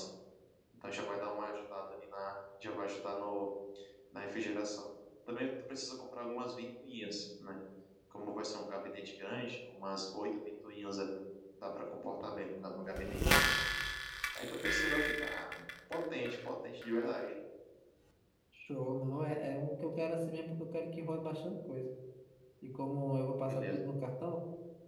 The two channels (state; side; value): identical; both; correlation 1.00